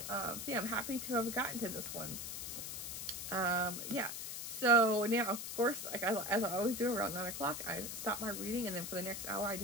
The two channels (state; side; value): noise; left; hiss, 6 dB below the sound